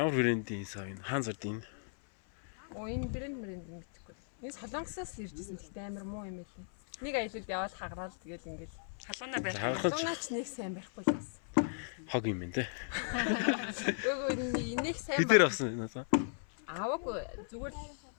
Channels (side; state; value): right; silent; 54 dB below the other